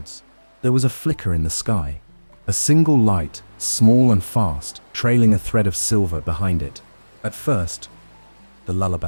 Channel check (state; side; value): inverted; both; correlation -1.00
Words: There was a flicker in the sky, a single light, small and fast, trailing a thread of silver behind it. At first, the